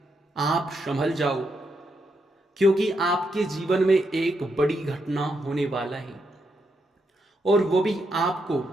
आप संभल जाओ, क्योंकि आपके जीवन में एक बड़ी घटना होने वाला है, और वो भी आपको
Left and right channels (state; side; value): normal; both; correlation 0.81